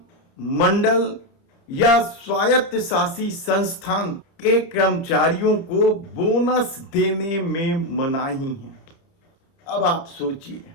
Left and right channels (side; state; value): right; late; 30 ms